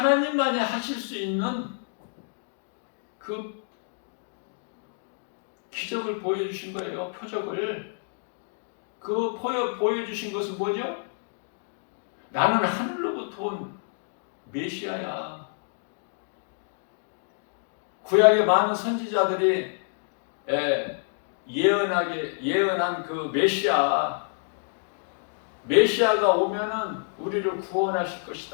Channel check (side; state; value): right; silent; digital silence